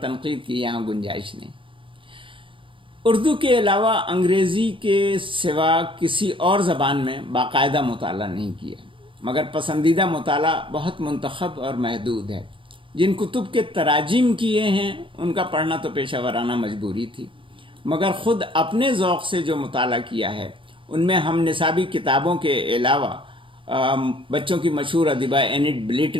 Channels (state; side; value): late; left; 0.25 ms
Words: تنقید کی یہاں گنجائش نہیں۔ اردو کے علاوہ انگریزی کے سوا کسی اور زبان میں باقاعدہ مطالعہ نہیں کیا، مگر پسندیدہ مطالعہ بہت منتخب اور محدود ہے۔ جن کتب کے تراجم کیے ہیں ان کا پڑھنا تو پیشہ ورانہ مجبوری تھی، مگر خود اپنے ذوق سے جو مطالعہ کیا ہے ان میں ہم نصابی کتابوں کے علاوہ بچوں کی مشہور ادیبہ اینٹ